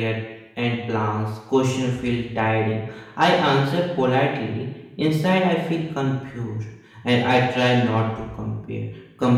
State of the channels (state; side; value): identical; both; correlation 1.00